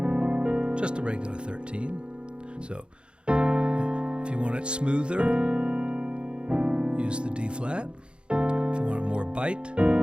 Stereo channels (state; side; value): late; left; 0.055 ms